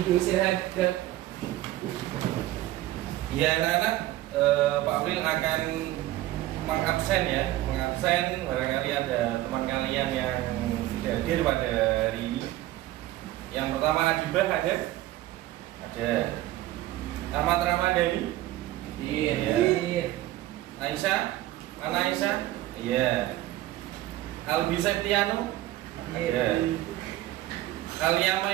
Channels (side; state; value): left; quieter; 15.6 dB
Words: Untuk istirahat gerak. Ya anak-anak, Pak April akan mengabsen ya, mengabsen barangkali ada teman kalian yang tidak hadir pada hari ini. Yang pertama Adibah ada? Ada. Ahmad Ramadhani? Iya. Aisyah? Mana Aisyah? Iya. Albi Septiano? Ada. Alia